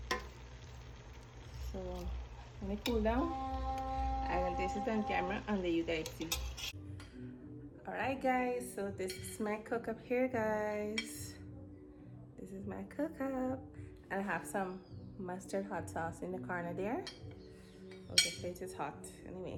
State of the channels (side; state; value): both; identical; correlation 1.00